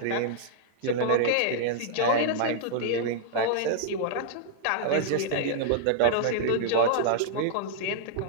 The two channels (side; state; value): both; different; correlation -0.02